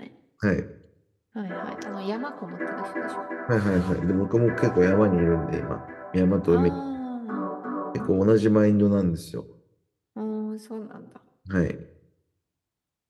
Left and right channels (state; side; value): identical; both; correlation 1.00